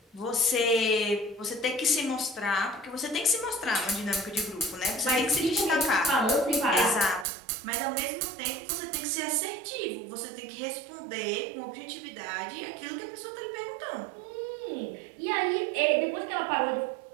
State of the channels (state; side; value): drops out; left; at 7.2 s